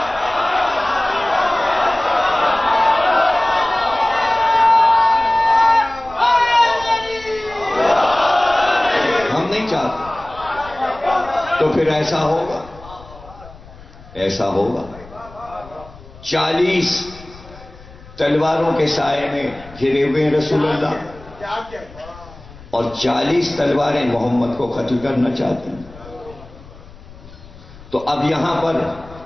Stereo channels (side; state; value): left; noise; rumble, 20 dB below the sound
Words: ہم نہیں چاہتے. تو پھر ایسا ہوگا، ایسا ہوگا. 40 تلواروں کے سائے میں گھرے ہوئے رسول اللہ، اور 40 تلواریں محمد کو قتل کرنا چاہتے ہیں. تو اب یہاں پر